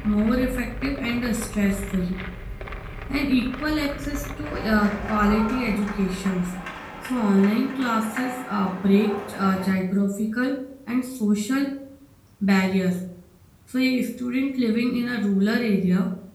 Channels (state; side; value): identical; both; correlation 1.00